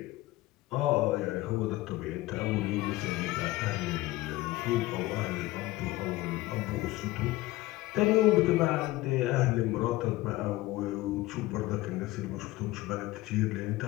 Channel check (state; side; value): quieter; right; 18.3 dB